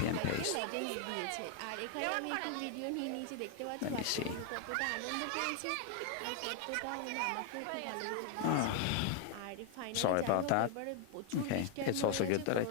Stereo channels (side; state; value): both; different; correlation 0.00